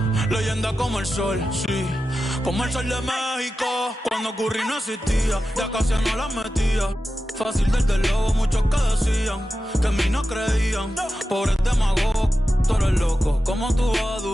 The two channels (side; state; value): both; normal; correlation 0.92